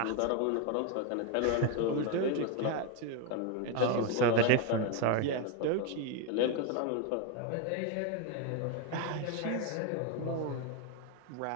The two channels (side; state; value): both; different; correlation 0.02